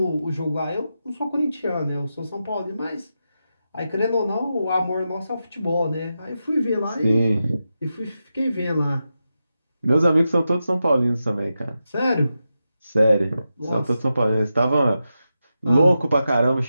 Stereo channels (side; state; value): both; inverted; correlation -0.89